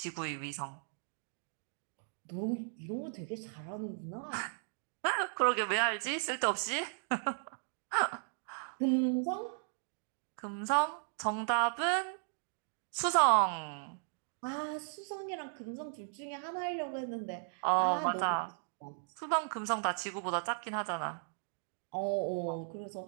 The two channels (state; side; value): silent; left; digital silence